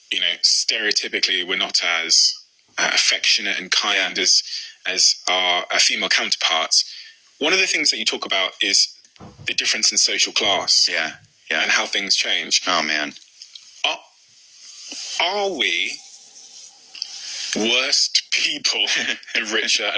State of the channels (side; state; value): both; identical; correlation 1.00